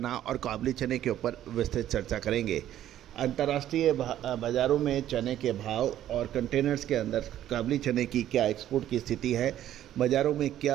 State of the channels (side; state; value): left; quieter; 12.1 dB